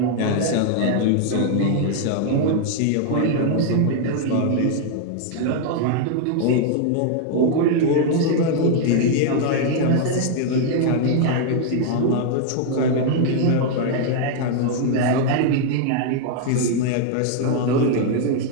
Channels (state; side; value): different; both; correlation 0.00